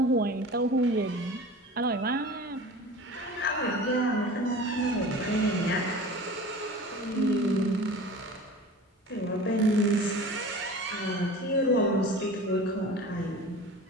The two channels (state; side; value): normal; both; correlation 0.38